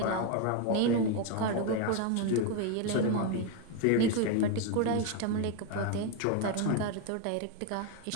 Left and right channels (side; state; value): both; different; correlation 0.01